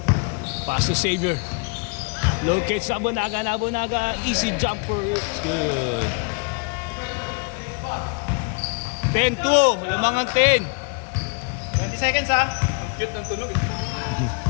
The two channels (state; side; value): quieter; right; 33.3 dB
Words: Pass to Xavier. Locates Nabunaga. Easy jumper. It's good. 10-2. Lamangan 10. 20 seconds ha. Cute ng tulog.